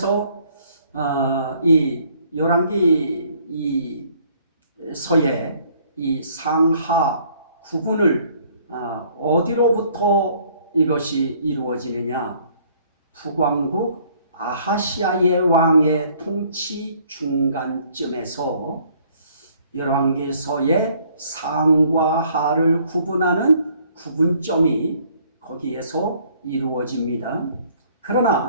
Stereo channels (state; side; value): inverted; both; correlation -0.61